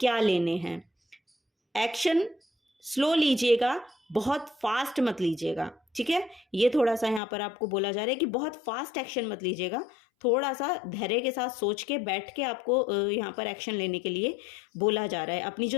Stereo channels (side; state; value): right; drops out; at 7.2 s